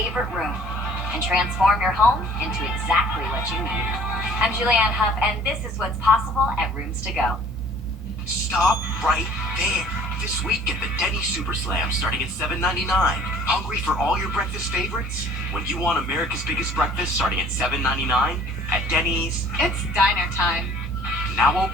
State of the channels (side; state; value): both; normal; correlation 0.53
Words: room. And transform your home into exactly what you need. I'm Julianne Huff, and this is what's possible at Rooms to Go. Stop right there. This week, get the Denny's Super Slam starting at $7.99. Hungry for all your breakfast favorites? When you want America's biggest breakfast starting at $7.99 at Denny's, it's diner time. Now